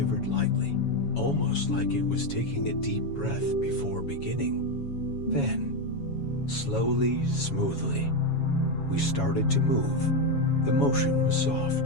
lightly, almost like it was taking a deep breath before beginning. Then, slowly, smoothly, We started to move. The motion was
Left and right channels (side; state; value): right; late; 7.2 ms